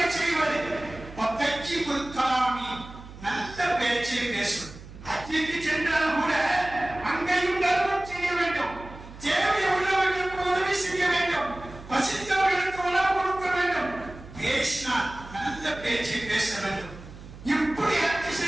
செய்வது, வத்தஜ்ஜிபுல் கலாமி, நல்ல பேச்சை பேசுவது. ஹஜ்ஜுக்கு சென்றால் கூட அங்கேயும் தர்மம் செய்ய வேண்டும், தேவை உள்ளவர்களுக்கு உதவி செய்ய வேண்டும், பசித்தவர்களுக்கு உணவு கொடுக்க வேண்டும், பேசினால் நல்ல பேச்சை பேச வேண்டும். இப்படி ஹஜ்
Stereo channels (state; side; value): noise; right; hum, 16 dB below the sound